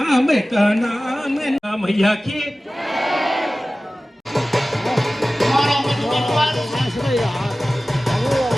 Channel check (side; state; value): both; normal; correlation 0.97